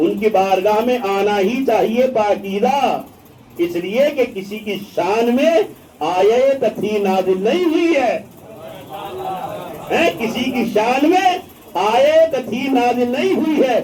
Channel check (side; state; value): both; identical; correlation 1.00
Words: کی بارگاہ میں آنا ہی چاہیے پاکیزہ، اس لیے کہ کسی کی شان میں آیت تھی نازل نہیں ہوئی ہے، کسی کی شان میں آیت تھی نازل نہیں ہوئی ہے،